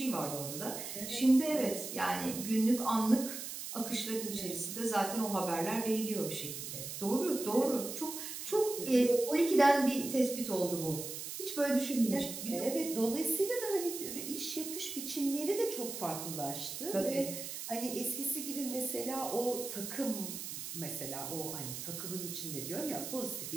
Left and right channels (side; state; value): right; noise; hiss, 7 dB below the sound